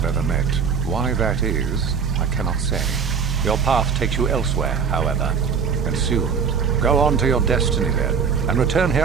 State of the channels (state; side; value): quieter; left; 6.3 dB